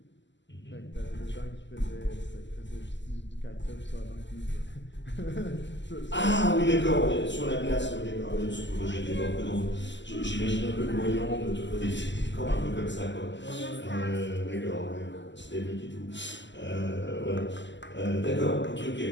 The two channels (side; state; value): right; late; 0.53 ms